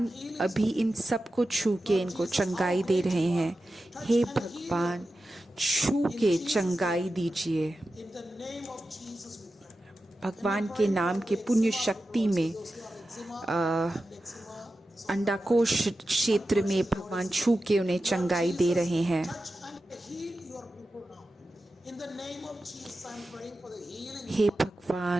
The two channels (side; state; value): both; normal; correlation 0.92